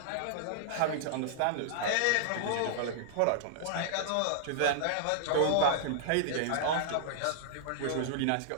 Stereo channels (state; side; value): different; both; correlation -0.01